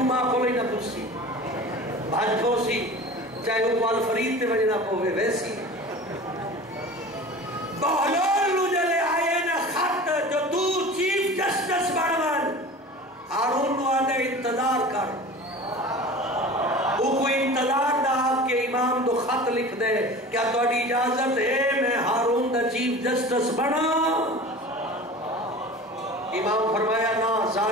ماں کو نہیں نہ پوچھی بھاج پوسی چاہے وہ پال فرید تے وجہ نہ پوے ویسی بہلول انتظار کر وہ کوئی انتظار دا کہ امام دو خط لکھ دے کیا تھوڑی اجازت ہے میں ہارون دا چیف جسٹس بنا امام فرمایا نا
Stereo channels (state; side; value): normal; both; correlation 0.37